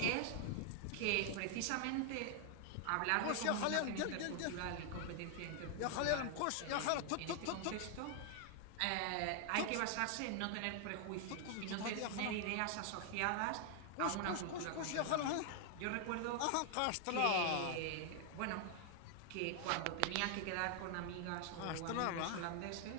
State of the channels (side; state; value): both; different; correlation 0.00